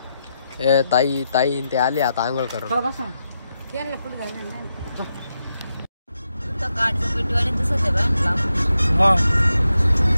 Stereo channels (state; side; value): inverted; both; correlation -0.85